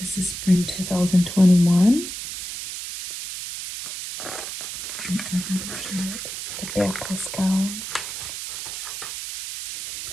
is spring 2021. The backless gown.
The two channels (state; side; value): noise; right; hiss, 7 dB below the sound